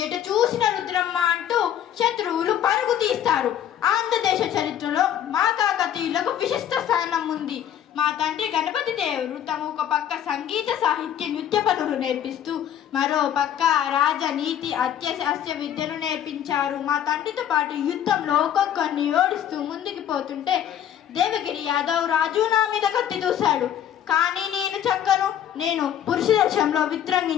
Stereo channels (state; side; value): quieter; right; 10.2 dB